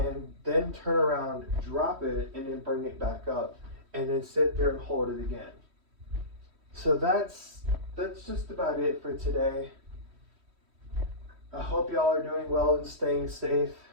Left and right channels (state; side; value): late; left; 3.1 ms